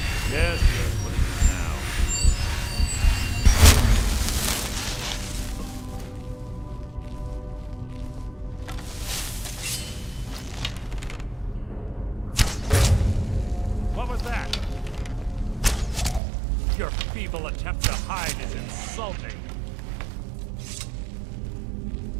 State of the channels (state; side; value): drops out; left; at 16.2 s